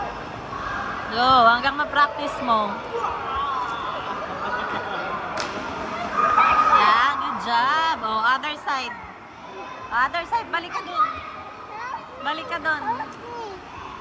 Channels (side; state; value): both; identical; correlation 1.00